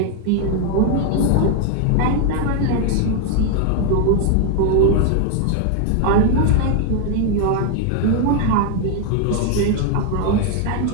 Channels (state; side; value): different; both; correlation 0.00